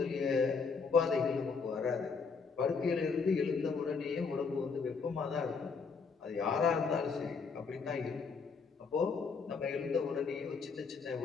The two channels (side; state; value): right; quieter; 5.1 dB